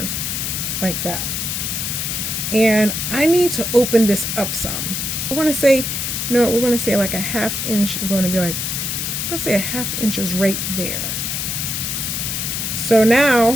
like that. And I need to open this up some. We're going to say, you know what, we're going to say like a 1/2 inch is going to be like, we're going to say a 1/2 inch is right there. So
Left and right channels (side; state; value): left; noise; hiss, 2 dB below the sound